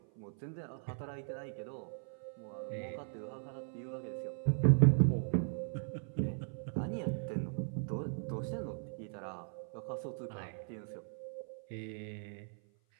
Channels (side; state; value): left; silent; 52 dB below the other